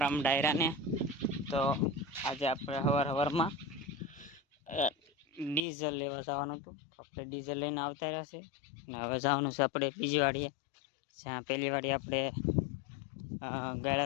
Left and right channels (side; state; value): right; drops out; at 5.7 s